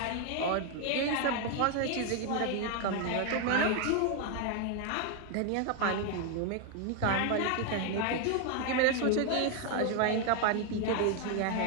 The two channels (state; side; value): different; both; correlation 0.01